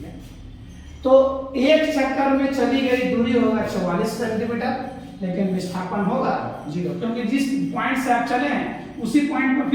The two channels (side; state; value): both; identical; correlation 1.00